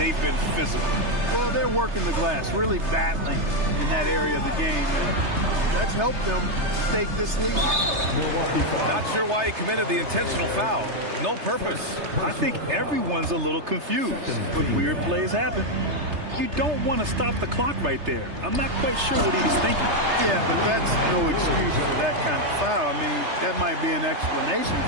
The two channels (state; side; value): late; left; 3.3 ms